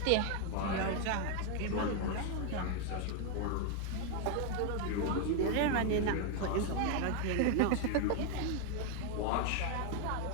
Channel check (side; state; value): both; different; correlation 0.01